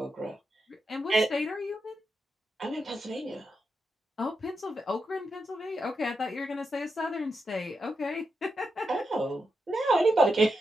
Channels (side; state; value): both; normal; correlation 0.86